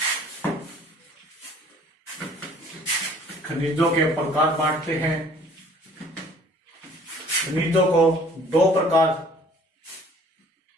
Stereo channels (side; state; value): both; normal; correlation 0.54